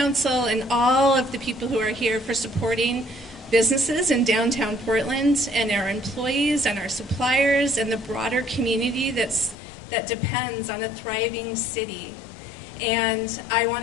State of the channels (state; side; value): drops out; right; at 9.6 s